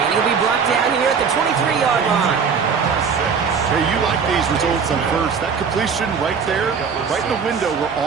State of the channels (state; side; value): quieter; left; 6.1 dB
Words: he'll be brought down here at the 23-yard line. Hey, you like these results on first. That completion right there, right in the window where